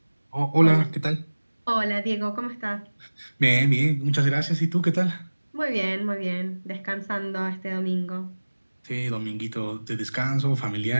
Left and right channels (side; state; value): both; inverted; correlation -1.00